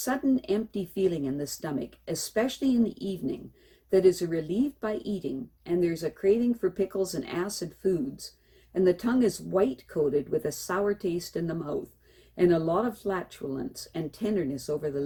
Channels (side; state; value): both; identical; correlation 1.00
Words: empty feeling in the stomach, especially in the evening, that is relieved by eating, and there's a craving for pickles and acid foods, and the tongue is white-coated with a sour taste in the mouth, and a lot of flatulence and tenderness over the